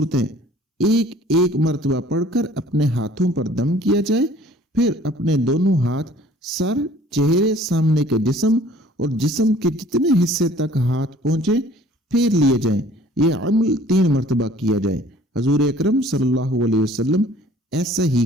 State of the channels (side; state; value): both; normal; correlation 0.53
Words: ایک ایک مرتبہ پڑھ کر اپنے ہاتھوں پر دم کیا جائے، پھر اپنے دونوں ہاتھ سر، چہرے، سامنے کے جسم اور جسم کے جتنے حصے تک ہاتھ پہنچے پھیر لیے جائیں۔ یہ عمل 3 مرتبہ کیا جائے۔ حضور اکرم صلی اللہ علیہ وسلم ایسا ہی